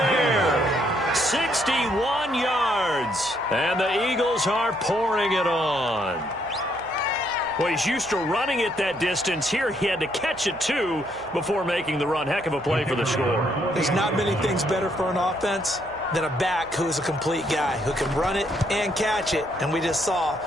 61 yards. And the Eagles are pouring it on. Well, he's used to running it that distance. Here he had to catch it, too, before making the run. Heck of a play for the score. There's not many things better for an offense than a back who's a complete guy who can run it and catch it. And we just saw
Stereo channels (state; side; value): noise; right; hum, 23 dB below the sound